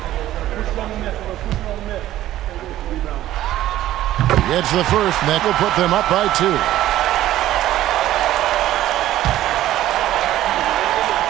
He gets the first, and that will put them up by 2.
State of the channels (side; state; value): left; quieter; 13.9 dB